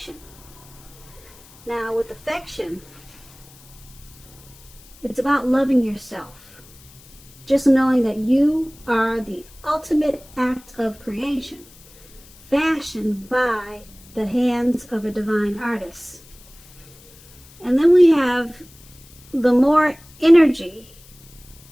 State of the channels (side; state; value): left; noise; hiss, 24 dB below the sound